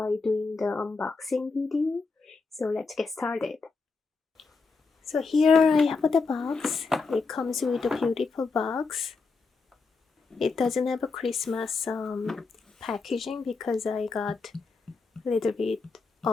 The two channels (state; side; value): quieter; right; 4.4 dB